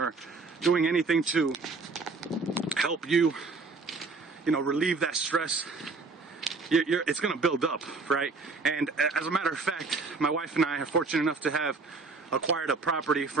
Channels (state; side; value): quieter; left; 4.0 dB